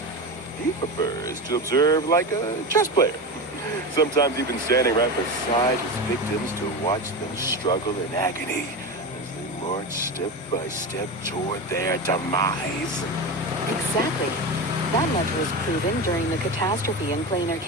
He prefers to observe like a chess player. Sometimes even standing right beside his victims to watch them struggle in agony as they march step by step toward their demise. Exactly. That much was proven during the catastrophe in Plain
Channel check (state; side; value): normal; both; correlation 0.22